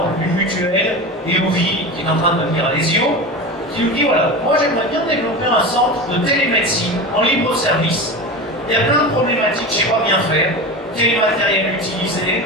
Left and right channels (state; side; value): normal; both; correlation 0.27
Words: une mutuelle, EOVI, qui est en train de devenir Alesio, qui nous dit voilà, moi j'aimerais bien développer un centre de télémédecine en libre service. Il y a plein de problématiques, je ne sais pas bien faire. Quel matériel utiliser?